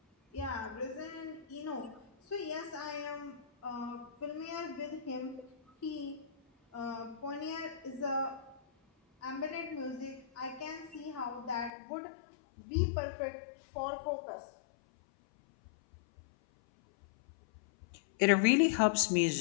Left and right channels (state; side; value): drops out; right; at 11.7 s